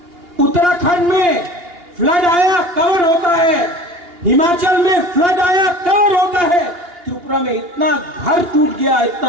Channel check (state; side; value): late; left; 2.8 ms